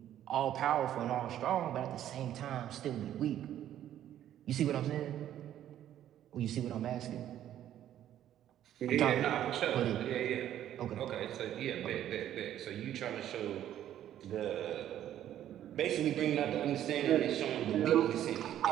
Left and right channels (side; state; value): left; quieter; 11.5 dB